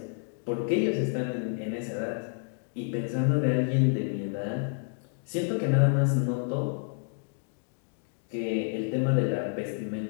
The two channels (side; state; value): right; silent; 58 dB below the other